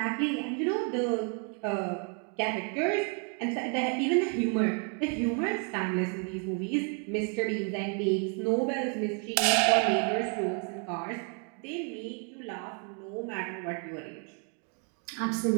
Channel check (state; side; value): quieter; left; 40.0 dB